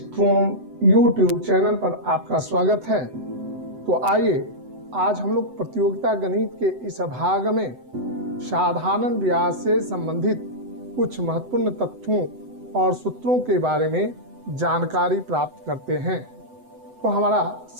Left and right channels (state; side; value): late; left; 7.9 ms